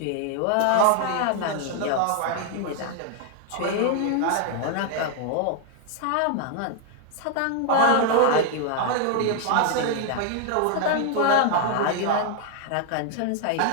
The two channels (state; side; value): different; both; correlation 0.00